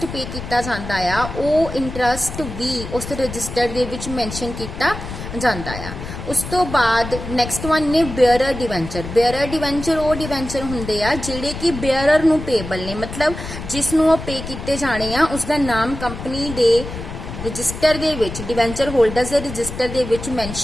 ਪੇ ਕੀਤਾ ਜਾਂਦਾ ਆ ਉਹ ਇੰਟਰਸਟ ਵੀ ਉਸ ਰਜਿਸਟਰ ਦੇ ਵਿੱਚ ਮੈਂਸ਼ਨ ਕੀਤਾ ਜਾਂਦਾ ਆ। ਉਸ ਤੋਂ ਬਾਅਦ ਨੈਕਸਟ ਵਨ ਨੇ ਬੇਅਰਰ ਡਿਵੈਂਚਰ। ਬੇਅਰਰ ਡਿਵੈਂਚਰ ਉਹ ਡਿਵੈਂਚਰ ਹੁੰਦੇ ਆ ਜਿਹੜੇ ਕਿ ਬੇਅਰਰ ਨੂੰ ਪੇਬਲ ਨੇ, ਮਤਲਬ ਜਿਸ ਨੂੰ ਉਹ ਪੇ ਕੀਤੇ ਜਾਣੇ ਆ ਉਸਦਾ ਨਾਮ ਕੰਪਨੀ ਦੇ ਰਜਿਸਟਰ ਦੇ ਵਿੱਚ ਡਿਵੈਂਚਰ ਹੋਲਡਰਸ ਦੇ ਰਜਿਸਟਰ ਦੇ ਵਿੱਚ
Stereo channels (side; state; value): left; noise; rumble, 9 dB below the sound